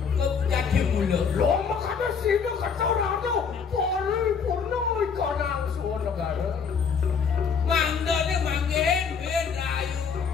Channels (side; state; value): right; quieter; 6.1 dB